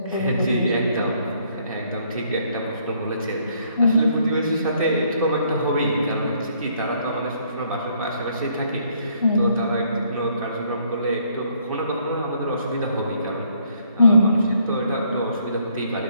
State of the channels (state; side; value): inverted; both; correlation -0.68